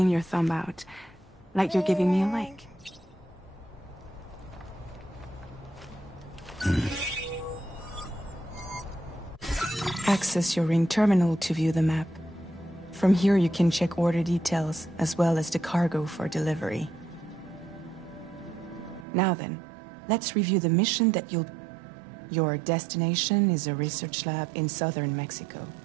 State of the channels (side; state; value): left; drops out; at 19.1 s